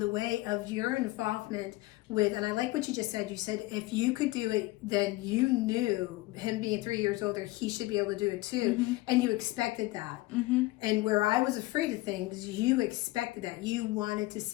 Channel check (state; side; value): quieter; right; 19.8 dB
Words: way of your involvement with, and I like what you just said. You said if you could do it, then you knew, him being 3 years older, he should be able to do it too. And you expected that. And where I was afraid of things, you expected that. You wanted to